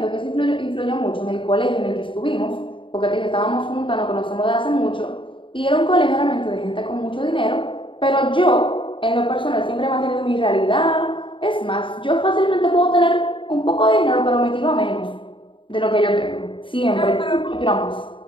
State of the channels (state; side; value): late; right; 0.25 ms